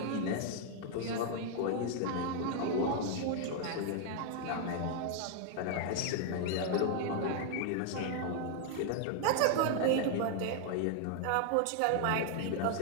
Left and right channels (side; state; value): both; different; correlation 0.00